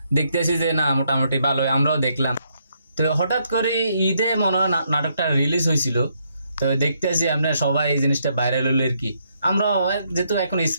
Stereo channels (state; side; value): inverted; both; correlation -0.75